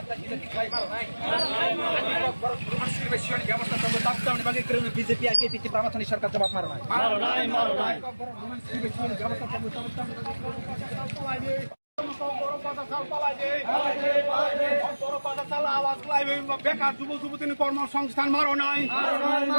বিজেপি আর কেপি প্রামাথনিক সরকার জবাব মারো নাই বেকার যুব যুবতী কর্মসংস্থান মারো নাই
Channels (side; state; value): both; inverted; correlation -1.00